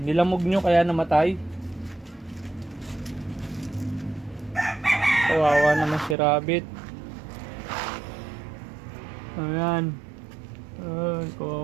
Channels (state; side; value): drops out; left; at 6.2 s